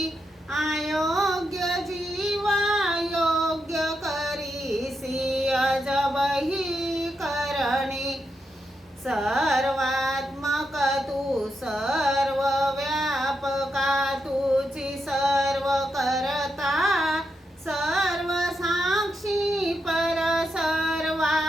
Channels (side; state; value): both; normal; correlation 0.84